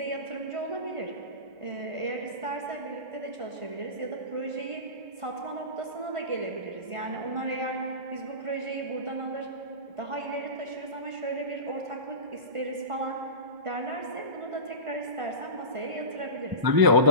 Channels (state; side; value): late; left; 1.5 ms